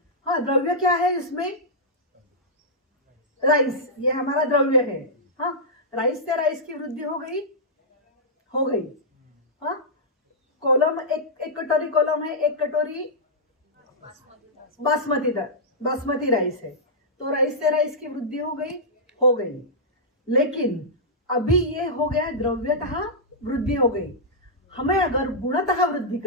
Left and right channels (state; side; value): normal; both; correlation -0.11